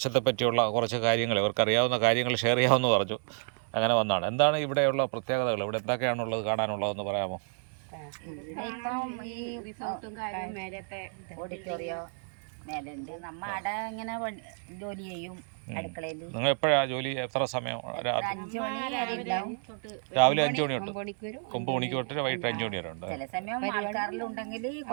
പറ്റിയുള്ള കുറച്ച് കാര്യങ്ങൾ, ഇവർക്കറിയാവുന്ന കാര്യങ്ങൾ ഷെയർ ചെയ്യാമെന്ന് പറഞ്ഞു. അങ്ങനെ വന്നതാണ്. എന്താണ് ഇവിടെയുള്ള പ്രത്യേകതകൾ, ഇവിടെ എന്തൊക്കെയാണുള്ളത്, കാണാനുള്ളതെന്ന് പറയാമോ? ഇപ്പം ഈ റിസോർട്ടും കാര്യം മേലത്തെ ഓഡിറ്റോറിയോ മേലുണ്ട്. നമ്മ അവിടെ ഇങ്ങനെ ജോലി ചെയ്യും അടുക്കളയിൽ. നിങ്ങൾ എപ്പോഴാണ് ജോലി? എത്ര സമയം? 5 മണി രാവിലെ 5 മണി തൊട്ട് 9 മണിക്ക് തൊട്ട് വൈകിട്ട് 5 മണി വരെ ഉണ്ട്. ചില സമയം ആൾക്കാരിലുണ്ടെങ്കിൽ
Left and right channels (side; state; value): left; silent; 57 dB below the other